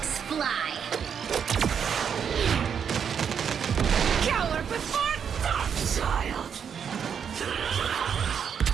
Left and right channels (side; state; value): left; quieter; 7.5 dB